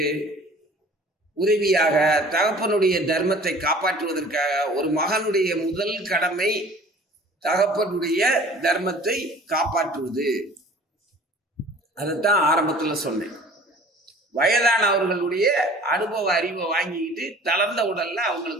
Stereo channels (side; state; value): both; normal; correlation 0.48